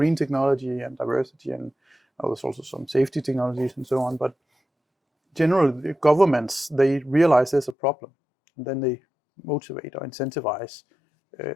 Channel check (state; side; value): drops out; right; at 7.8 s